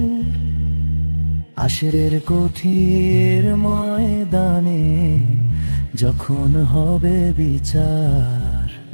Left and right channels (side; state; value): both; inverted; correlation -1.00